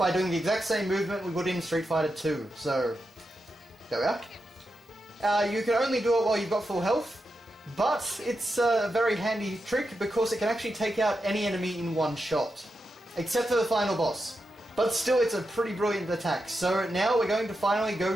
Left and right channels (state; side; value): normal; both; correlation 0.87